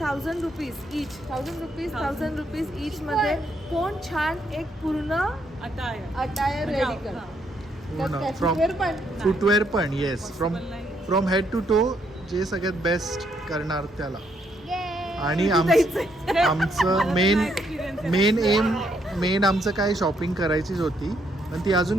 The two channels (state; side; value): normal; both; correlation 0.74